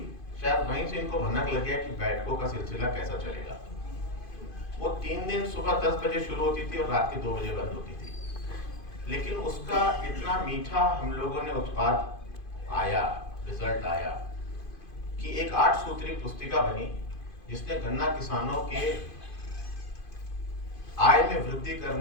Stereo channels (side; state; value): right; late; 2.5 ms